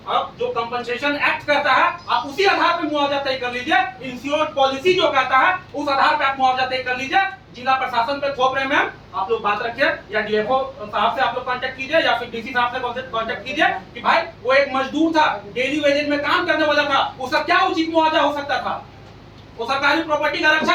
अब जो कंपनसेशन एक्ट कहता है आप उसी आधार पे मुआवजा तय कर लीजिए। इंश्योरेंस पॉलिसी जो कहता है उस आधार पे आप मुआवजा तय कर लीजिए। जिला प्रशासन पे थोप रहे हैं आप लोग बात रखिए, या डीएफओ साहब से आप लोग कांटेक्ट कीजिए या फिर डीसी साहब से कांटेक्ट कीजिए कि भाई वो एक मजदूर था, डेली वेजेज में काम करने वाला था, उसका क्या उचित मुआवजा हो सकता था? वो सरकारी प्रॉपर्टी का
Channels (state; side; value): identical; both; correlation 1.00